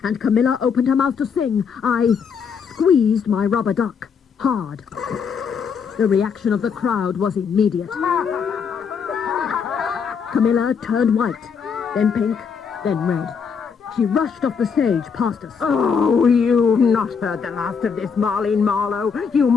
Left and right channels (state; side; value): quieter; right; 6.3 dB